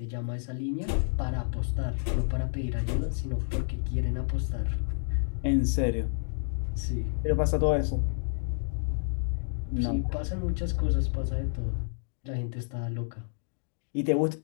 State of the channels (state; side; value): silent; right; digital silence